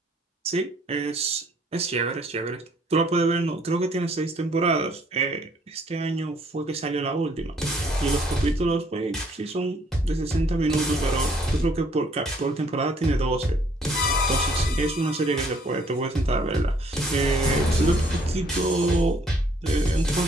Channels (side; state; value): both; normal; correlation 0.63